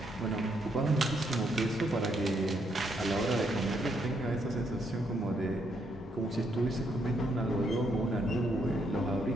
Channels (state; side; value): normal; both; correlation 0.75